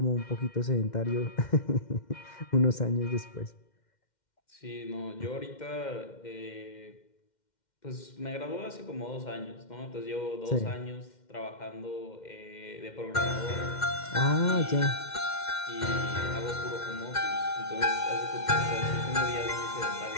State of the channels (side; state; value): right; late; 2.1 ms